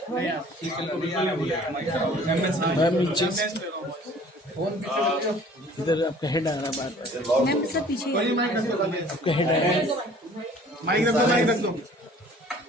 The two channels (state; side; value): normal; both; correlation 0.51